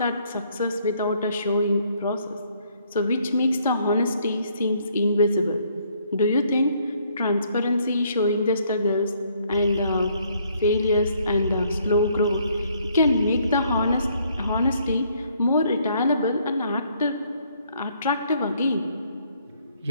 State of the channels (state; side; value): inverted; both; correlation -0.67